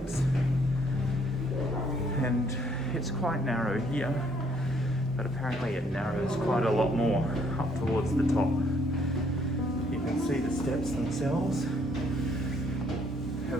and it's quite narrow here, but apparently it narrows quite a lot more up towards the top. You can see the steps themselves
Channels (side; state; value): both; normal; correlation 0.67